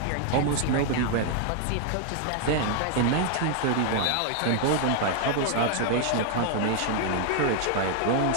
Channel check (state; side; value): different; both; correlation 0.00